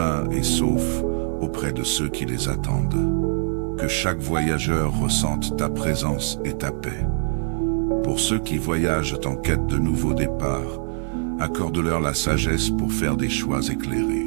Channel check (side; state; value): left; silent; 63 dB below the other